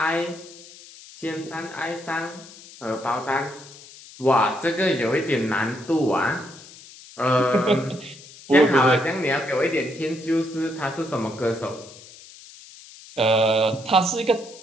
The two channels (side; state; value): left; noise; hiss, 19 dB below the sound